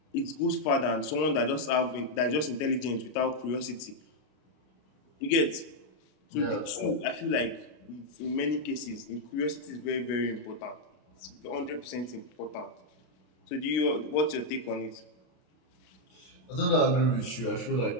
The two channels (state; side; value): late; right; 33 ms